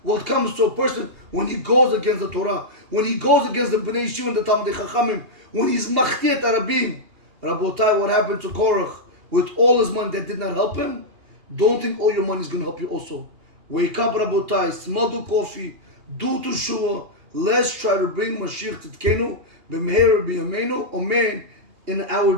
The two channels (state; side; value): late; left; 2.8 ms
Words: what comes to a person when he goes against the Torah, when he goes against the Bnei Yeshiva and the Talmidei Chachamim, when he's Machloket Arabim. Rabotai, what happened to Korach? With all his money that did not help him, don't think all your money is going to help you also. Wake up, Rabotai, smell the coffee, do teshuvah. Let's try to bring Mashiach Tzidkenu, b'meher b'yameinu, amen, in our